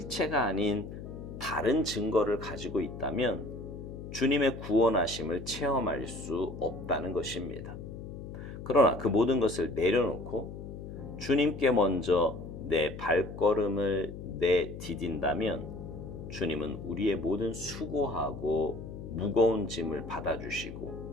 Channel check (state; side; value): noise; left; hum, 10 dB below the sound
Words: 아닌 다른 증거를 가지고 있다면 주님의 구원하심을 체험할 수 없다는 것입니다. 그러나 그 모든 것을 내려놓고 주님께 먼저 내 발걸음을 내디딘다면 주님은 우리의 모든 수고하고 무거운 짐을